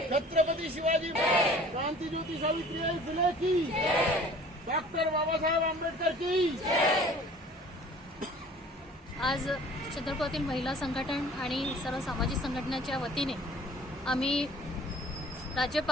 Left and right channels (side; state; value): both; normal; correlation 0.49